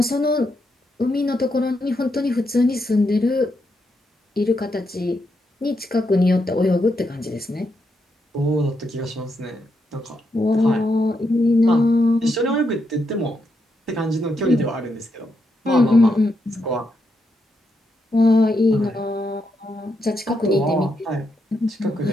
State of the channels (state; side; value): normal; both; correlation 0.81